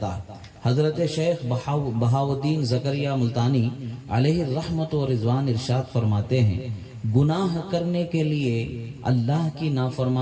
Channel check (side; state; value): both; identical; correlation 1.00